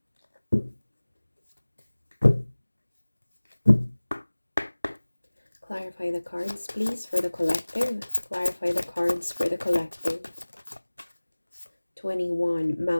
Clarify the cards, please, for the collective. Clarify the cards for the collective. 21,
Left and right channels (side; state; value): both; inverted; correlation -1.00